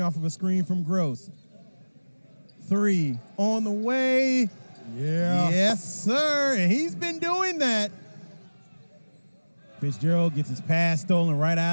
off of a screen from Gross. 3 on the way. Yeah. Yes, sir. And he's been doing that. Fitzgerald gets his pass stolen right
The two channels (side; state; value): both; inverted; correlation -1.00